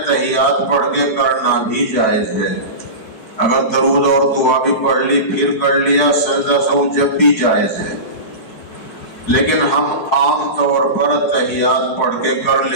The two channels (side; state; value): right; late; 4.7 ms